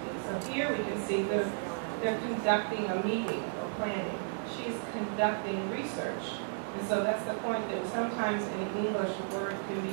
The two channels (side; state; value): left; silent; digital silence